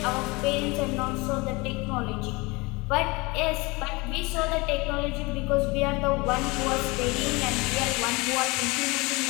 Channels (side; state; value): right; quieter; 24.9 dB